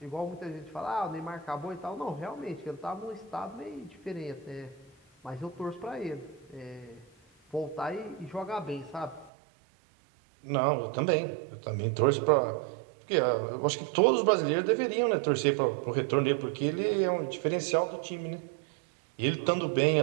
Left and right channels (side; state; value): left; drops out; at 9.3 s